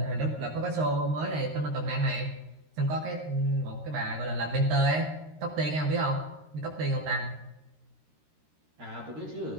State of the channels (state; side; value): late; left; 13 ms